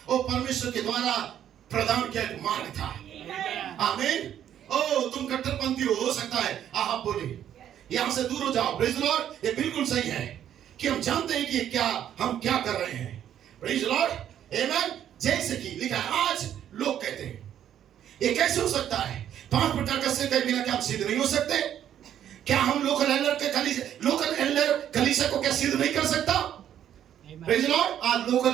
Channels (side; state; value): left; quieter; 10.3 dB